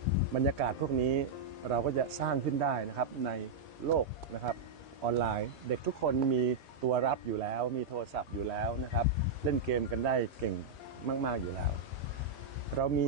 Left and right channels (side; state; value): left; quieter; 4.0 dB